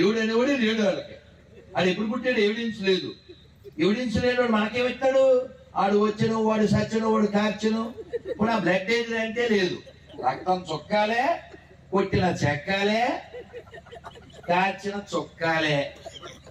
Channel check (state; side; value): identical; both; correlation 1.00